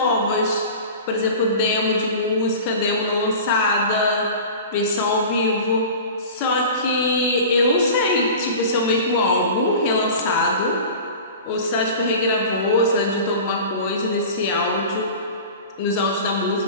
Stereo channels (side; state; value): both; inverted; correlation -0.36